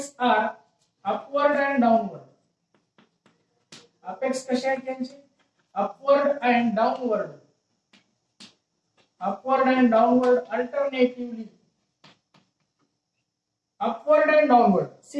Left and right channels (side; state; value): both; identical; correlation 1.00